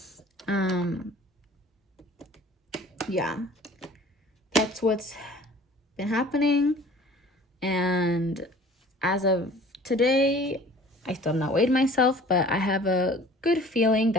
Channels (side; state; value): both; normal; correlation 0.47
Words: Yeah. That's what's been happening. And as of today, I still have not weighed myself, but I have a good feeling